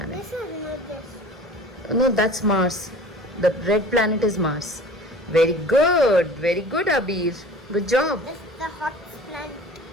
This is not this. No, that's Mars. The red planet is Mars. Very good, Abir. Good job. This is the hottest planet.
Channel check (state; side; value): normal; both; correlation 0.43